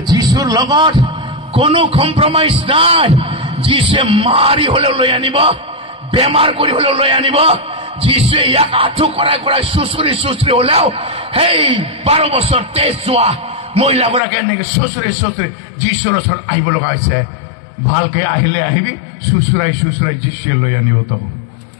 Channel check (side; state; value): right; drops out; at 14.2 s